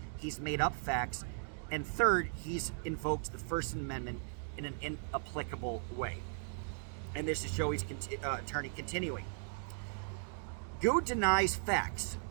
he's made up facts, and third, he's invoked the First Amendment in an inapplicable way. And this is Joey's attorney continuing. Good denies facts.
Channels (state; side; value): silent; left; digital silence